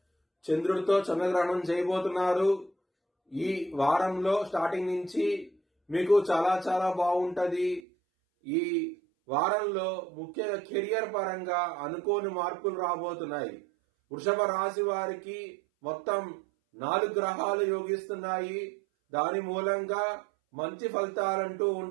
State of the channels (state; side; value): drops out; left; at 7.8 s